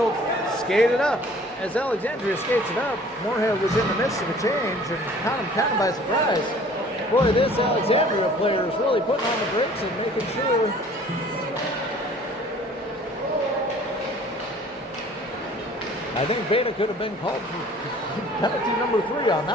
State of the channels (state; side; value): normal; both; correlation 0.51